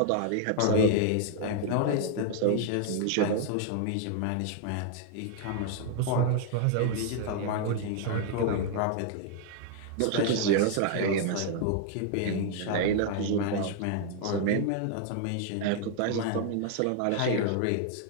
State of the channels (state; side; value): different; both; correlation 0.00